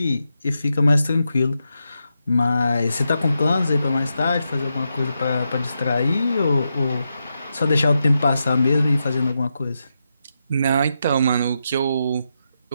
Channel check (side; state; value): both; inverted; correlation -0.86